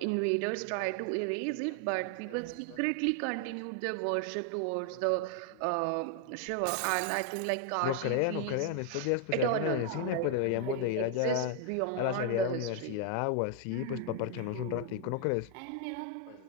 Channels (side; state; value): both; different; correlation 0.00